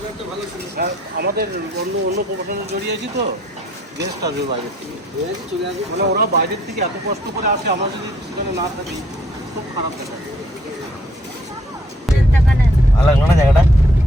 আমাদের অন্য প্রফেশনে জড়িয়েছি তো, গেস্ট আসবে বাইরের থেকে, মানে ওরা বাইরের থেকে এত কষ্ট করে আসে, আমরা যদি সেখানে না থাকি খুব খারাপ দেখা। ভালো লাগলো না জায়গাটা?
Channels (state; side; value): normal; both; correlation 0.65